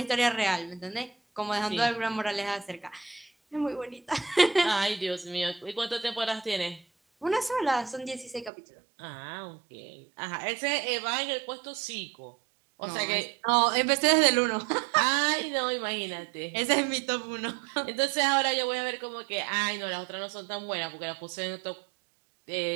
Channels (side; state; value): left; drops out; at 8.5 s